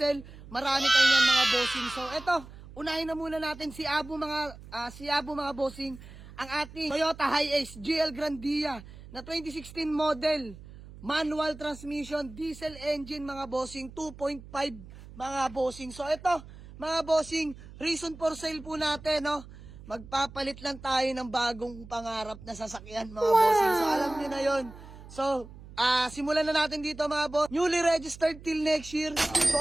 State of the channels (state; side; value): noise; right; hum, 17 dB below the sound